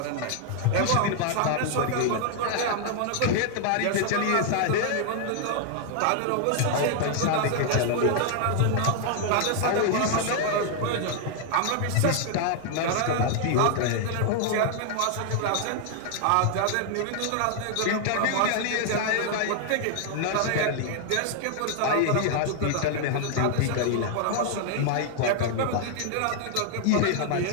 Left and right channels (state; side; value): different; both; correlation 0.00